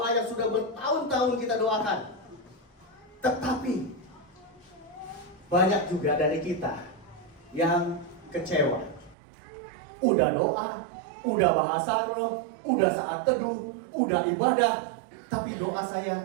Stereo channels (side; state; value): left; drops out; at 9.2 s